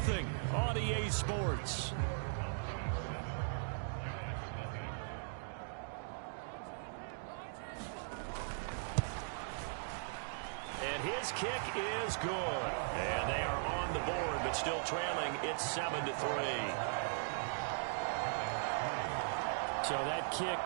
on EA Sports. His kick is good. And they are on the board, but still trailing. It's 7-3. So that kick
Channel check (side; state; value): left; silent; digital silence